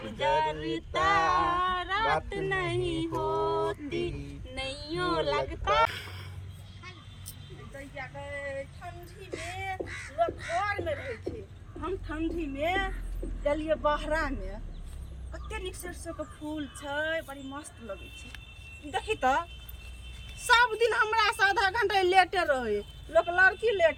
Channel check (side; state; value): both; identical; correlation 1.00